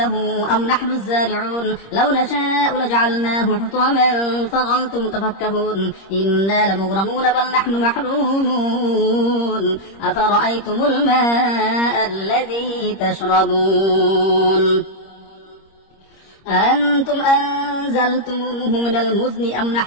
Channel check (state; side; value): late; right; 26 ms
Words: أم نحن الزارعون لو نشاء لجعلناه حطاما فظلتم تفكهون إنا لمغرمون بل نحن محرومون أفرأيتم الماء الذي تشربون أأنتم أنزلتموه من المزن أم